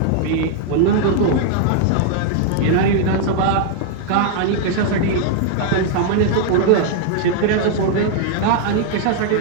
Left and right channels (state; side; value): different; both; correlation 0.00